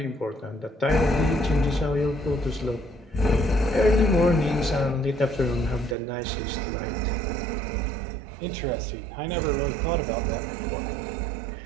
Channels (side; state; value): left; drops out; at 6.0 s